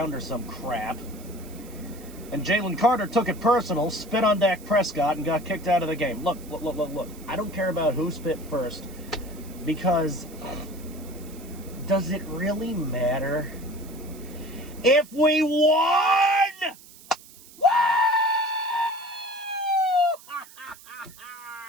or some crap. And Jalen Carter took it personal, spit on Dak Prescott, and got kicked out of the game. Look. I don't care about who spit first, because does it really matter? If we won! Woo!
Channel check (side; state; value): right; noise; hiss, 21 dB below the sound